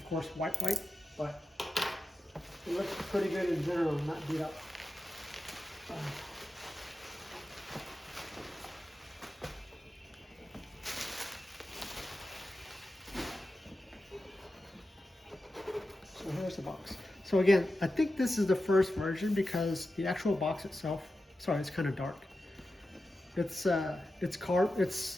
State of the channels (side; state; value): both; normal; correlation 0.92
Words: course, white, but it looks pretty good in general, not beat up. So here's the box. So again, I think this is the first version because the actual box itself Sorry, it's kind of dark. It's a